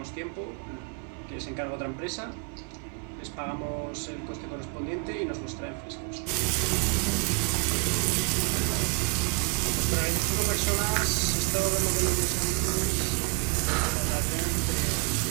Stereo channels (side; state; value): left; quieter; 33.0 dB